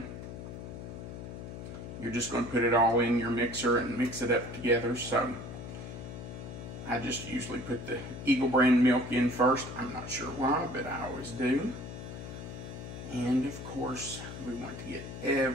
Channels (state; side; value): noise; left; hum, 10 dB below the sound